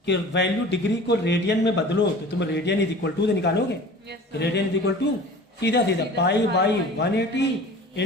कि वैल्यू डिग्री को रेडियन में बदलो तो तुम रेडियन इज इक्वल टू तो निकालोगे। Yes, sir. Radian is equal to सीधा सीधा पाई बाई 180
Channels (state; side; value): normal; both; correlation 0.42